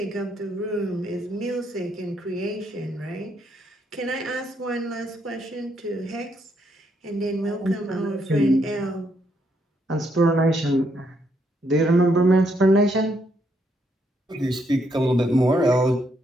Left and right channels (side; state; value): both; normal; correlation 0.75